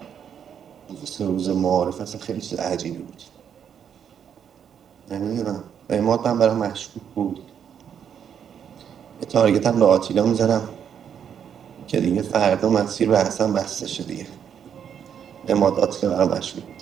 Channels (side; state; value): left; quieter; 8.3 dB